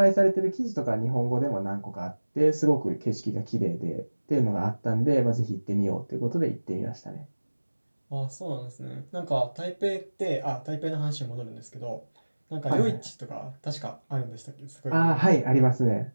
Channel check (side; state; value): both; inverted; correlation -1.00